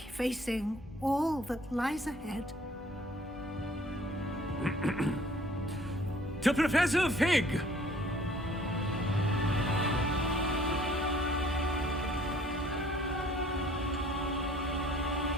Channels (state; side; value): normal; both; correlation 0.56